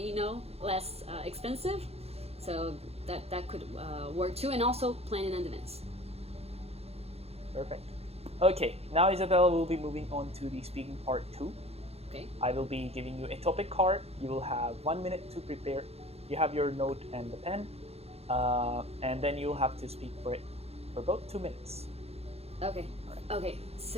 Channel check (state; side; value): late; left; 0.29 ms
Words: less expensive. So that could work too, and also plan in advance. Perfect. Okay, now Isabella will be moving on to the speaking part 2. Okay. I will be giving you a topic card. You will have 1 minute to prepare. You have your note and the pen, and then you'll have to speak for it for about 2 minutes. Okay. Okay,